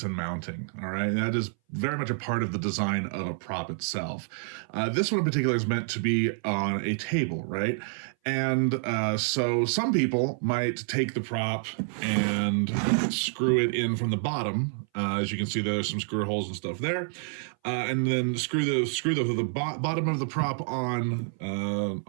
and mounting. All right, that is very much a part of the design of a prop itself. This one in particular is meant to be on a table, right? And so some people might take the prop and screw it in from the bottom. As you can see, there's some screw holes and stuff there, and then screw the bottom of the prop on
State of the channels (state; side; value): silent; left; 58 dB below the other